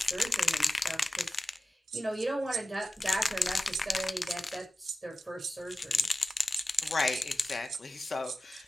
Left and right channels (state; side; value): normal; both; correlation 0.95